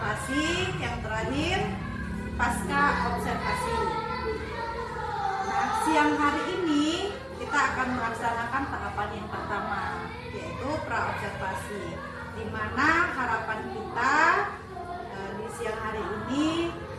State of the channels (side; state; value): both; identical; correlation 1.00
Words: yang terakhir pasca observasi. Nah, siang hari ini kita akan melaksanakan tahapan yang pertama, yaitu pra-observasi, di mana harapan kita di siang hari ini